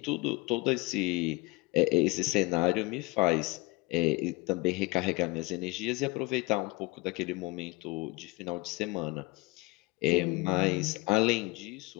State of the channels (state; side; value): quieter; right; 24.1 dB